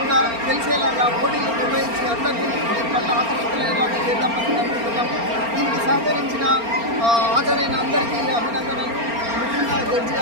తెలిసేలాగా పోటీలు నిర్వహించి అందరికీ దీని పట్ల ఆకర్షితులయ్యేలాగా చేద్దామని అనుకుంటున్నాము. దీనికి సహకరించిన హాజరైన అందరికీ అభినందనలు. ముఖ్యంగా జడ్జి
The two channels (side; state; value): left; late; 4.3 ms